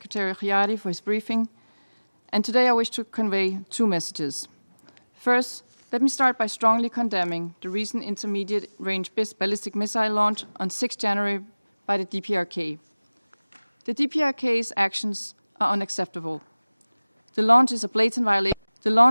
Guyana for his briefing, and today I wish to convey two messages. First, let me start by strongly condemning the recent intermediate-range ballistic missile launch on 6 January by the DPRK. The DPRK's actions are unacceptable. The launch is a blatant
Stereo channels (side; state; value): both; inverted; correlation -1.00